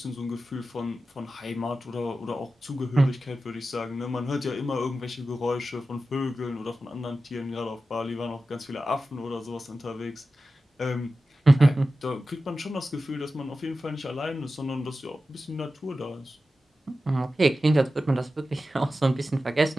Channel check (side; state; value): both; normal; correlation 0.93